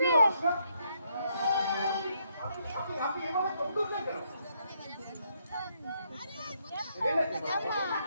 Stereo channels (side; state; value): both; inverted; correlation -0.74